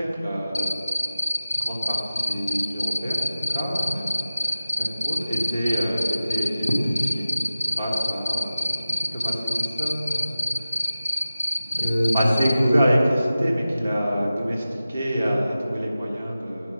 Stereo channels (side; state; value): both; inverted; correlation -0.95